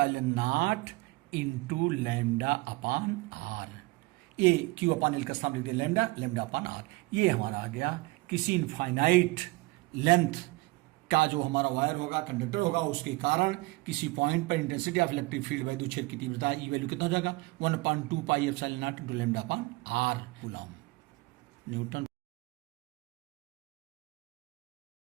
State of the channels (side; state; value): left; quieter; 22.8 dB